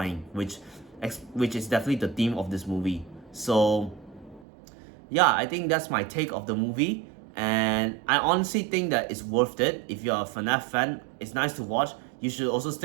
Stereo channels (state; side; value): drops out; left; at 4.5 s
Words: which is definitely the theme of this movie. So yeah, I think that's my take of the movie, and I honestly think that it's worth it. If you're a FNAF fan, it's nice to watch. You should also